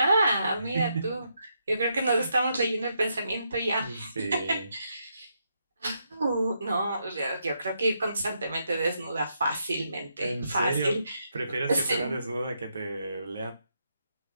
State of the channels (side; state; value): both; inverted; correlation -0.79